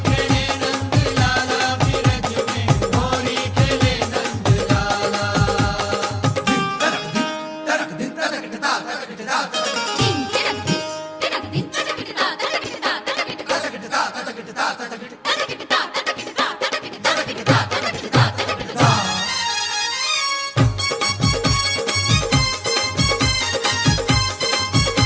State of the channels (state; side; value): identical; both; correlation 1.00